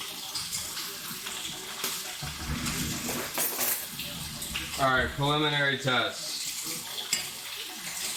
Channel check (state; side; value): identical; both; correlation 1.00